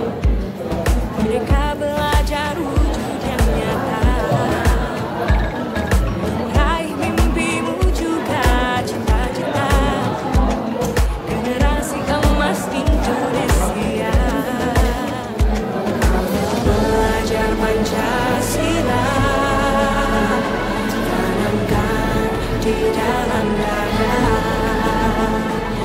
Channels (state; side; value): identical; both; correlation 1.00